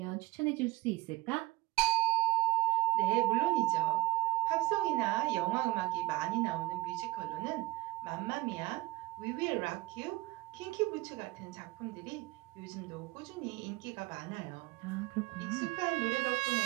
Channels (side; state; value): left; quieter; 18.8 dB